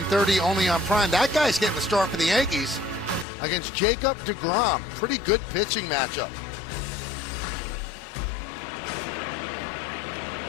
only on Prime. That guy's getting the start for the Yankees against Jacob deGrom. Pretty good pitching matchup.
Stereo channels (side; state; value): right; drops out; at 3.2 s